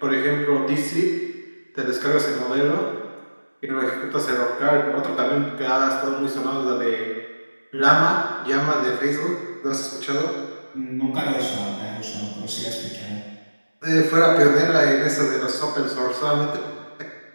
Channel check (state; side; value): inverted; both; correlation -1.00